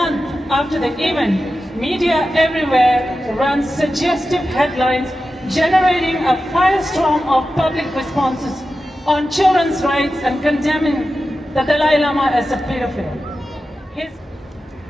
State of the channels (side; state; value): both; normal; correlation 0.92